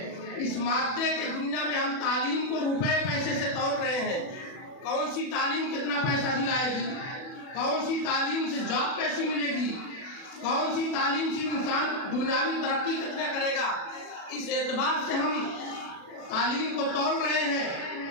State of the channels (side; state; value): right; late; 40 ms